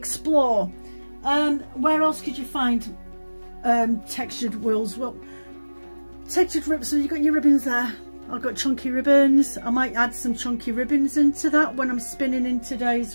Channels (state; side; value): inverted; both; correlation -1.00